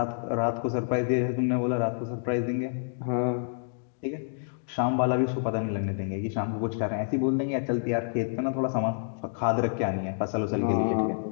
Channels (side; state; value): right; silent; digital silence